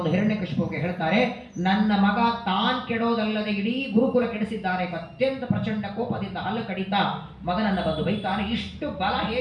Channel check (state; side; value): identical; both; correlation 1.00